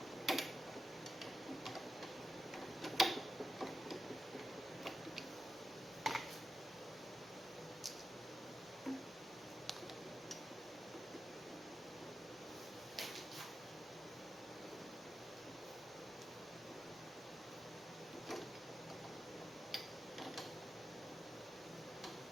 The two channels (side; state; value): both; normal; correlation 0.90